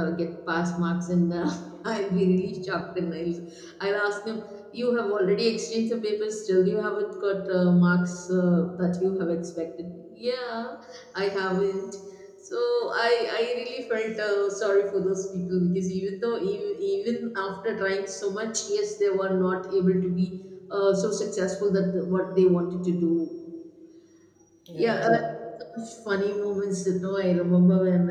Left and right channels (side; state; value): both; identical; correlation 1.00